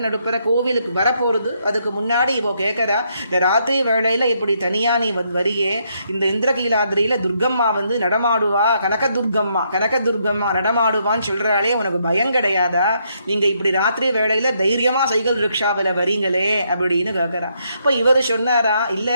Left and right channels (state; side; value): inverted; both; correlation -0.75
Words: நடுப்புற கோவிலுக்கு வரப்போறது. அதுக்கு முன்னாடி இவோ கேட்கறா, இந்த ராத்திரி வேளையில இப்படி தனியா நீ வரியே, இந்த இந்திரகீலாத்ரியில துர்கம்மா நடமாடுவா, கனகதுர்கம்மா நடமாடுவான்னு சொல்றாளே, உனக்கு பயம் கிடையாதா? நீங்க இப்படி ராத்திரி வேளையில தைரியமா சைக்கிள் ரிக்ஷாவில் வரீங்களே அப்படின்னு கேட்கறா. இப்போ இவர் சொன்னாரா,